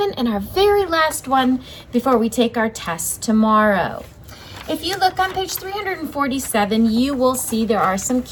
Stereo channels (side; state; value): both; identical; correlation 1.00